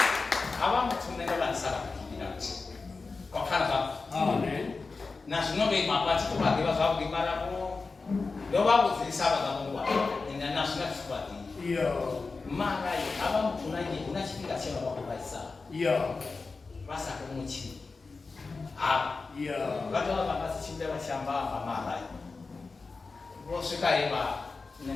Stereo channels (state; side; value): quieter; right; 4.1 dB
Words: Abang sebenarnya kan salah. mara aba mtunanye unachipika chema kwa kubaisa basa kumuchi watu wabasi chimbe bashamba amara bosika iba